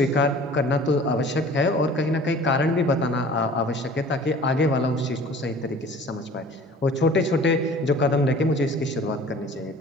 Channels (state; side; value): normal; both; correlation 0.47